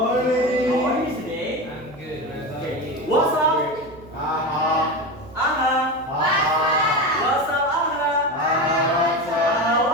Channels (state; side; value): noise; right; hum, 20 dB below the sound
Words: How are you today? I'm good. What about Okay. you? What's up? Aha. Aha. Aha. What's up, Aha? Aha.